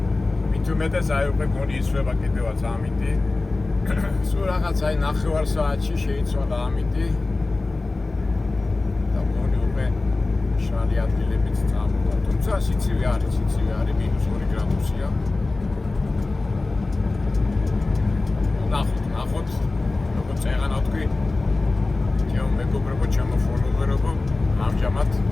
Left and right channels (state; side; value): quieter; right; 3.3 dB